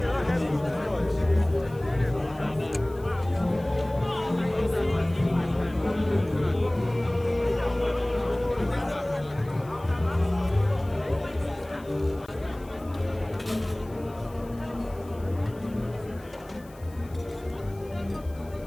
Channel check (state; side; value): noise; left; hiss, 26 dB below the sound